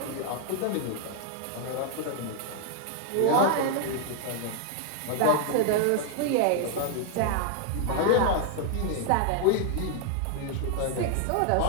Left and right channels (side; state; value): both; different; correlation 0.00